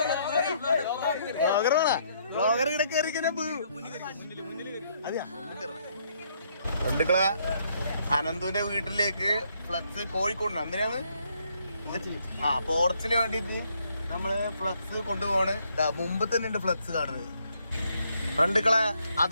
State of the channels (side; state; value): both; inverted; correlation -0.70